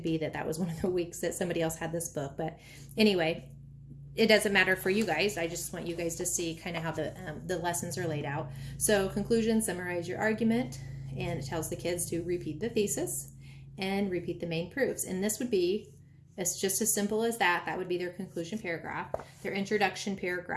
be that was one of the weeks that somebody else had this book. But anyway, it doesn't matter for you guys. I just want you guys to see kind of how the lessons are laid out. So conclusion, summarize your argument, and it tells the kids to repeat the thesis and repeat the main proofs. And this would be, it's just as simple as that. That would be their conclusion paragraph. Their introduction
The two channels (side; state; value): both; identical; correlation 1.00